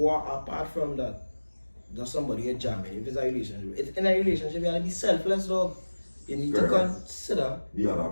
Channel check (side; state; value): both; inverted; correlation -1.00